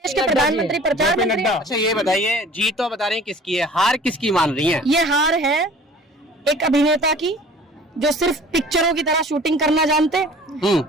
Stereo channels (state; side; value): normal; both; correlation 0.47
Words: देश के प्रधानमंत्री प्रचार मंत्री। अच्छा ये बताइए, जीत तो बता रही हैं किसकी है, हार किसकी मान रही है? ये हार है एक अभिनेता की जो सिर्फ पिक्चरों की तरह शूटिंग करना जानते,